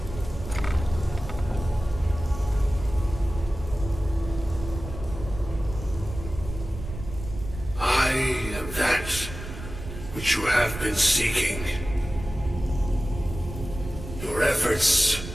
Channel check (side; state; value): right; noise; rumble, 10 dB below the sound